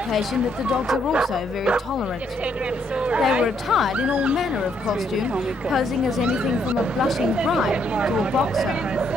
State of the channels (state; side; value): normal; both; correlation 0.72